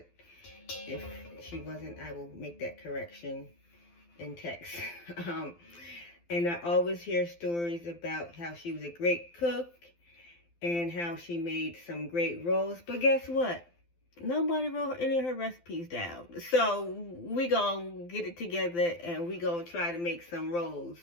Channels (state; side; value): late; right; 12 ms